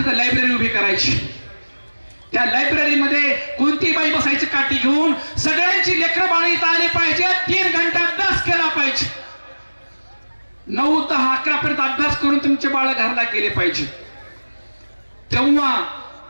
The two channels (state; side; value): inverted; both; correlation -1.00